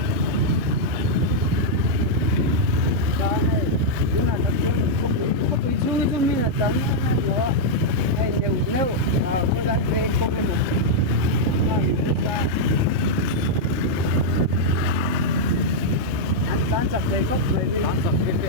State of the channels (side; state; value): left; late; 3.3 ms